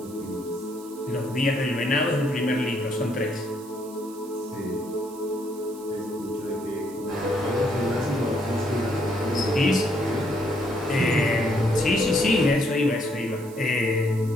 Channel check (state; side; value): noise; right; hiss, 21 dB below the sound